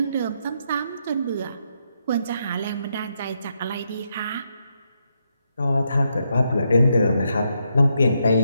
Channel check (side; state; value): both; inverted; correlation -0.79